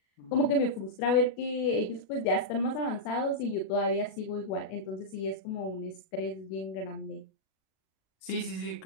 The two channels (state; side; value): late; right; 37 ms